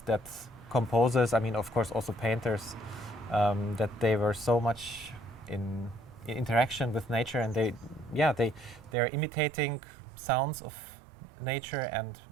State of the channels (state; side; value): drops out; left; at 9.0 s